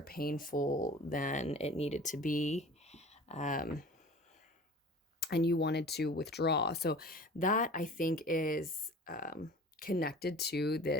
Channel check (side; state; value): both; normal; correlation 0.42